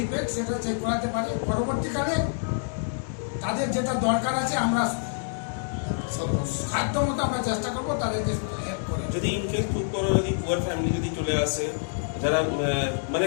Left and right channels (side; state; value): right; silent; 60 dB below the other